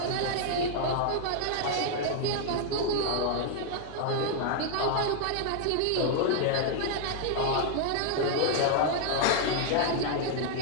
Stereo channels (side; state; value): both; different; correlation 0.00